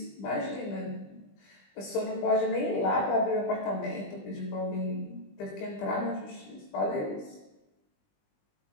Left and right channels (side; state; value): right; late; 20 ms